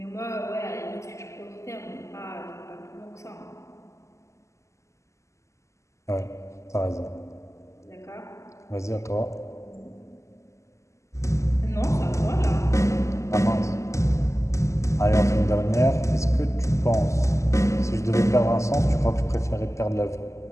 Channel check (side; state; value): right; late; 0.14 ms